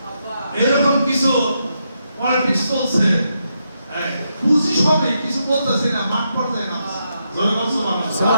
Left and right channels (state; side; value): inverted; both; correlation -0.82